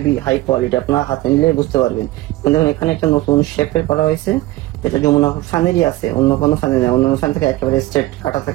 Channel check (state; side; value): quieter; left; 17.5 dB